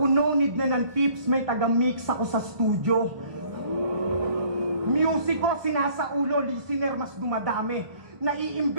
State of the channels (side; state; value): left; late; 1.0 ms